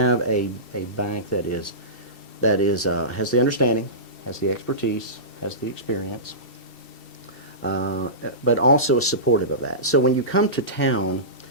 a bank that has the understanding, has the expertise, has the experience, but also is supportive of that. So when you come to town,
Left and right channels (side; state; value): right; late; 2.7 ms